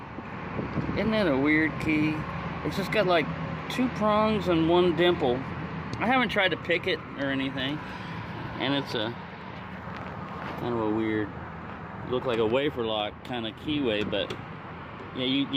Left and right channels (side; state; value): both; identical; correlation 1.00